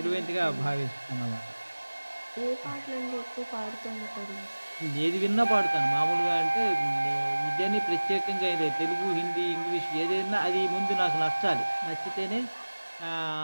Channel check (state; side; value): inverted; both; correlation -1.00